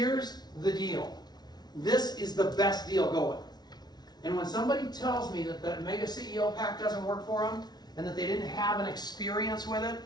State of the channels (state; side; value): late; right; 0.19 ms